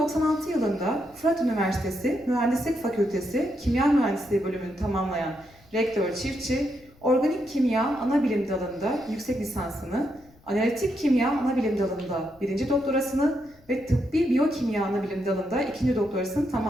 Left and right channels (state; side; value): noise; left; rumble, 28 dB below the sound